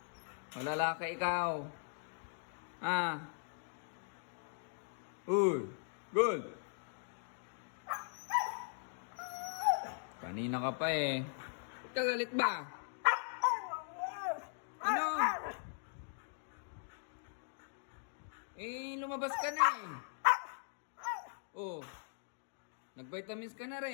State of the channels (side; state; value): right; silent; digital silence